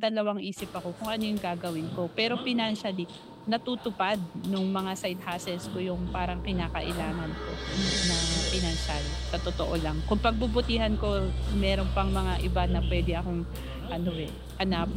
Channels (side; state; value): both; identical; correlation 1.00